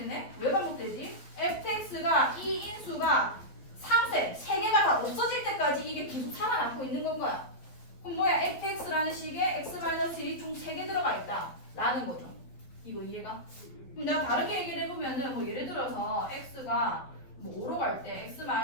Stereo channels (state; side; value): late; right; 11 ms